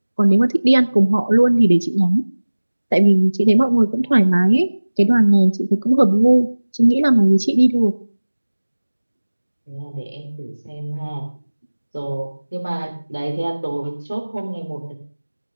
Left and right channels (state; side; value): inverted; both; correlation -1.00